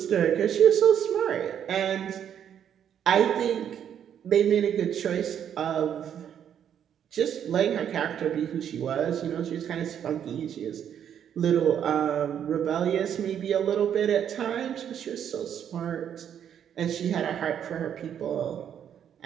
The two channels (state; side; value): quieter; left; 9.1 dB